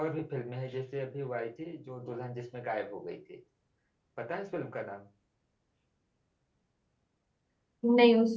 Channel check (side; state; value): both; identical; correlation 1.00